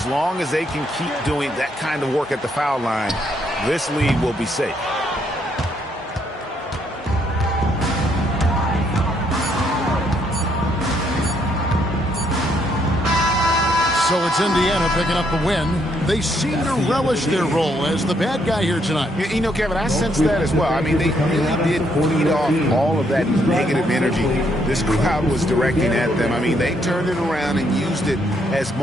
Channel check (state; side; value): normal; both; correlation 0.72